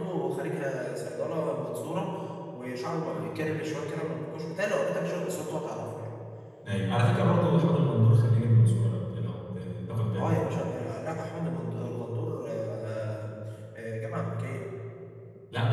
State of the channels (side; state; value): both; identical; correlation 1.00